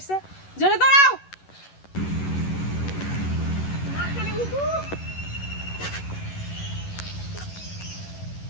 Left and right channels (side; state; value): right; late; 11 ms